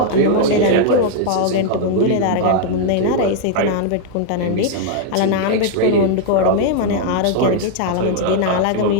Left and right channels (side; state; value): both; different; correlation 0.00